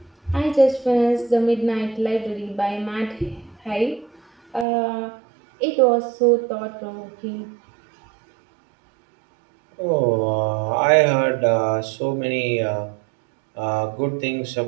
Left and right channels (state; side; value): drops out; left; at 4.7 s